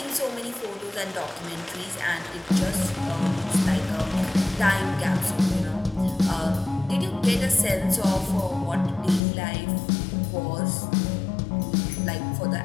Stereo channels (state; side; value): drops out; right; at 9.2 s